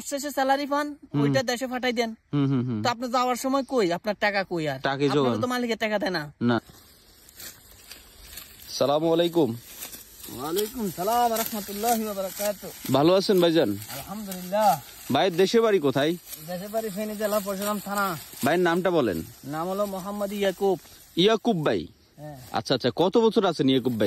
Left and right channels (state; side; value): identical; both; correlation 1.00